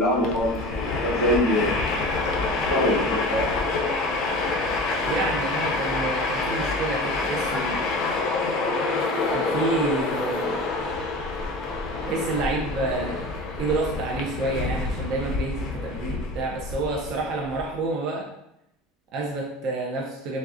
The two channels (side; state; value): both; normal; correlation 0.35